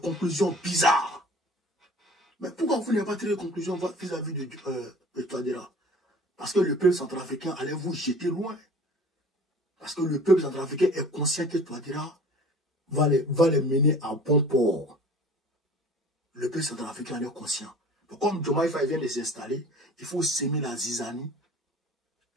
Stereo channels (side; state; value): both; normal; correlation 0.45